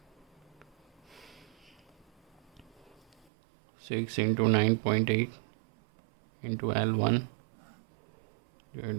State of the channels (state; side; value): drops out; left; at 3.2 s